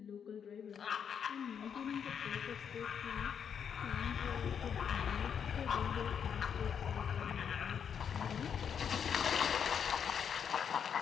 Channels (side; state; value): right; quieter; 7.6 dB